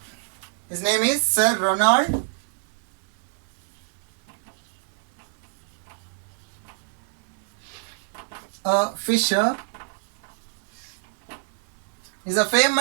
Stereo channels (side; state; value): left; silent; 61 dB below the other